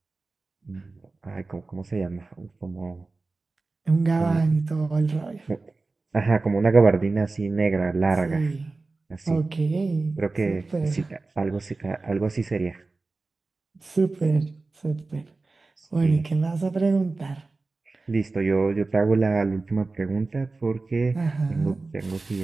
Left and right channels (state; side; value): quieter; left; 3.6 dB